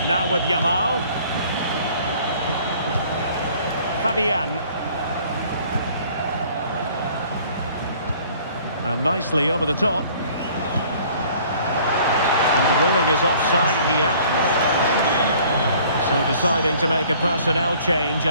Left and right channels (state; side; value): inverted; both; correlation -0.54